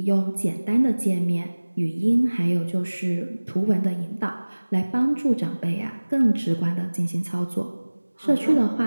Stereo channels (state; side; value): inverted; both; correlation -1.00